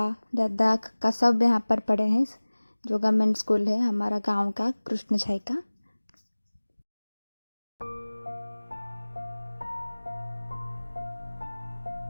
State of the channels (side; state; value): both; inverted; correlation -1.00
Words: दादा काका सब यहाँ पर पढ़े हैं। जो गवर्नमेंट स्कूल है हमारा गांव का, कृष्ण छाई का।